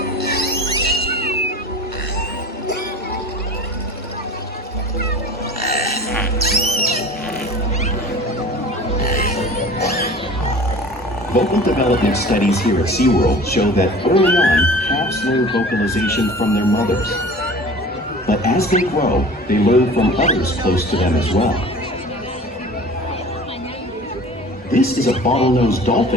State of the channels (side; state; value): both; normal; correlation 0.41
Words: Vocal development studies here at SeaWorld show that early on, calves learn vocalization from their mothers. But as they grow, they learn from others close to them as well. This is a bottlenose